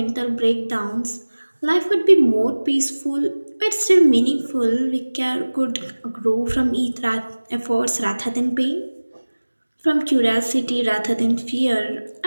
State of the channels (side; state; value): both; inverted; correlation -1.00